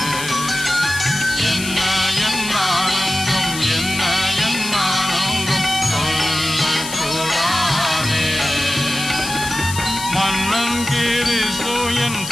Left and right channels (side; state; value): left; noise; hiss, 8 dB below the sound